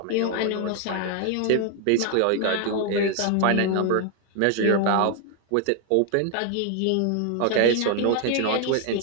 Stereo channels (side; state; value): both; different; correlation 0.00